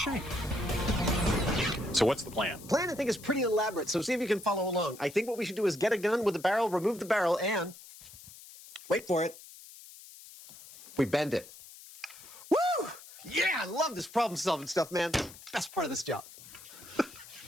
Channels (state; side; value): noise; left; hiss, 18 dB below the sound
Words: So what's the plan? Plan, I think, is pretty elaborate, so see if you can follow along. I think what we should do is get a gun with a barrel, remove the barrel, and... wait for it. We bend it. Woo! Yeah, I love this problem-solving stuff, man. Best part of this job.